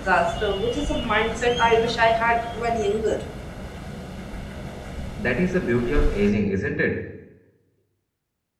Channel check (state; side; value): identical; both; correlation 1.00